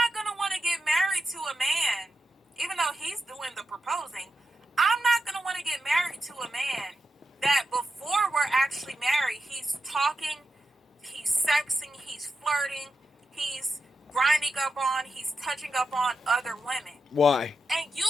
going to want to get married to a man, even though he's doing the proposing. I'm not going to want to get married to a man that before we're actually married, he's talking, he's sexing, he's flirting, he's grinding up on, he's touching up on other women. Why? And you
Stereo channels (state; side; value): normal; both; correlation 0.87